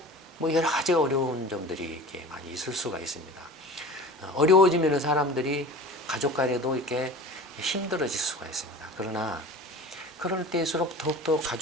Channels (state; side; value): normal; both; correlation 0.38